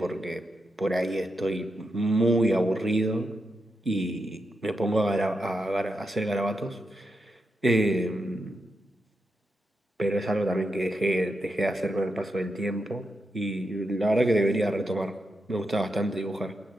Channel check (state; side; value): normal; both; correlation 0.85